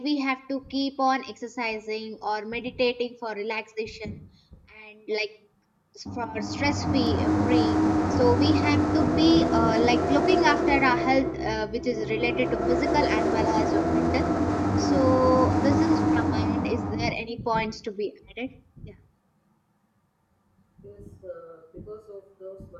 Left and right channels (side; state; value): both; identical; correlation 1.00